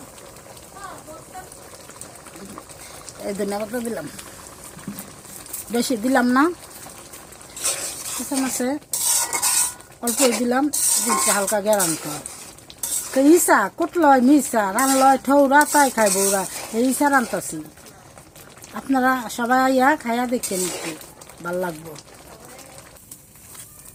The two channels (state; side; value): identical; both; correlation 1.00